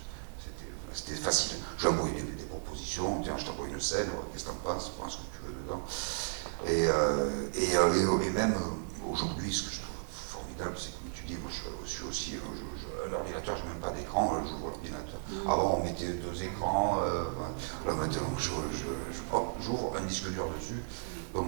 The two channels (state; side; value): silent; left; 55 dB below the other